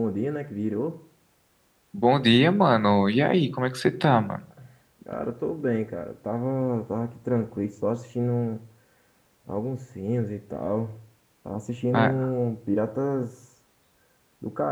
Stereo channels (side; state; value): both; identical; correlation 1.00